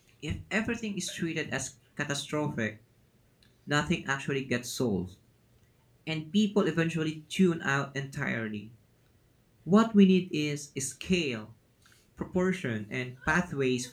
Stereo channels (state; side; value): identical; both; correlation 1.00